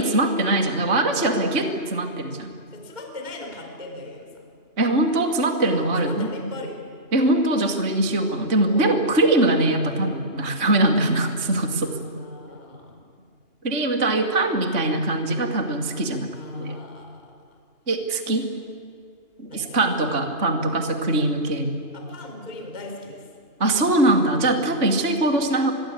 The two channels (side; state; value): left; late; 2.8 ms